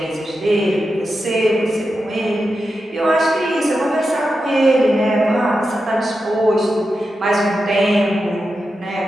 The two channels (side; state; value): both; normal; correlation 0.89